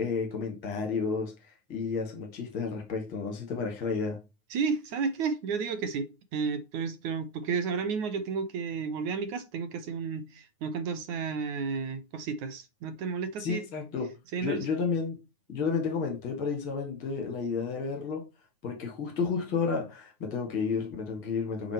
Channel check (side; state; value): left; late; 9.5 ms